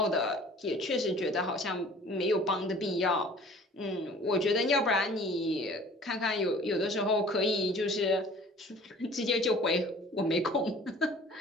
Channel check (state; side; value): normal; both; correlation 0.48